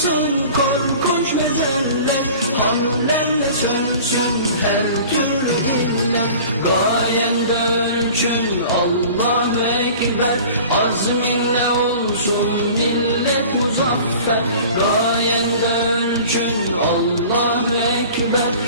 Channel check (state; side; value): inverted; both; correlation -0.43